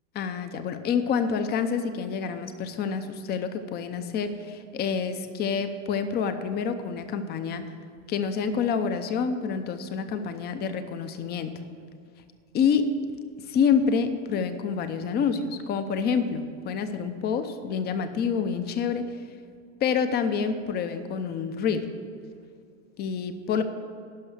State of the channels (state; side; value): quieter; right; 5.8 dB